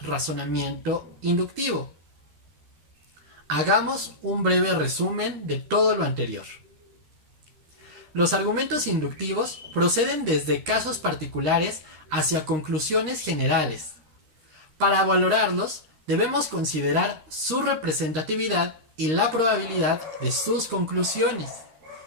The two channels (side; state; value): left; late; 13 ms